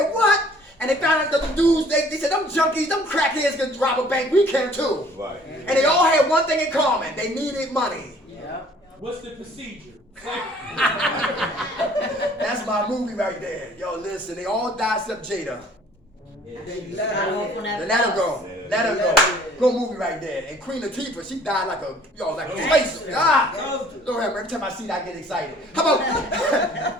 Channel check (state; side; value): normal; both; correlation 0.55